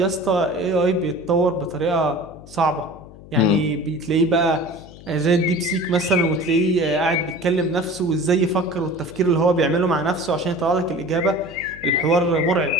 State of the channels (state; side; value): noise; left; hum, 19 dB below the sound